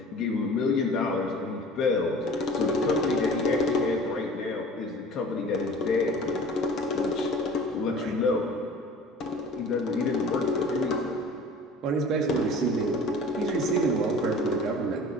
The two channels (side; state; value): both; normal; correlation 0.43